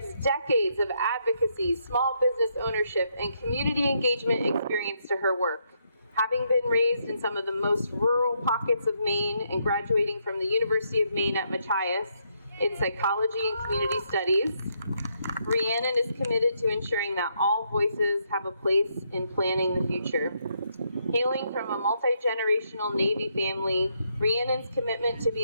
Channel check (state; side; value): inverted; both; correlation -0.76